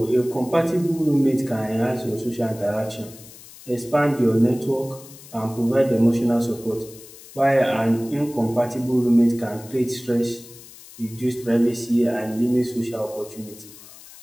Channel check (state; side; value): noise; left; hiss, 19 dB below the sound